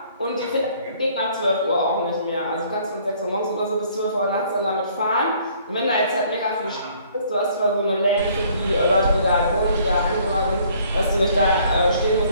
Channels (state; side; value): inverted; both; correlation -0.60